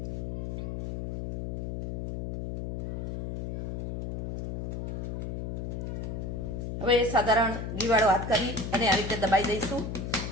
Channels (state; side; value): noise; left; hum, 3 dB below the sound